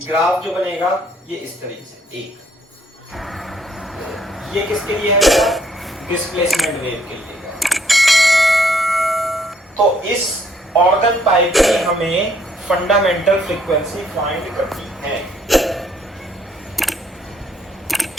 ग्राफ जो बनेगा ये इस तरीके से एक, ये किसके लिए है डिस्प्लेसमेंट वेव के लिए है। तो इस ऑर्गन पाइप की हमें फंडामेंटल फ्रीक्वेंसी फाइंड करनी है।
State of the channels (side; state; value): both; normal; correlation 0.67